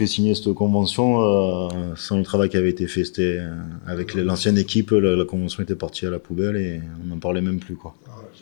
signer cette convention sans le travail qui avait été fait. C'était avec l'ancienne équipe, la convention était partie à la poubelle et on n'en parlait même plus, quoi.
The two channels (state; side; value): silent; right; digital silence